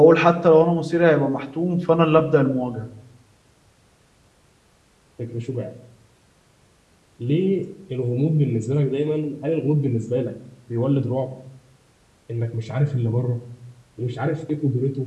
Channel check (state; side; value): identical; both; correlation 1.00